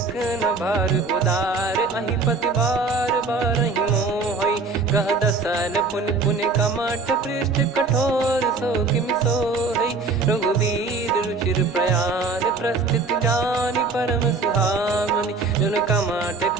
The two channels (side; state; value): left; quieter; 4.0 dB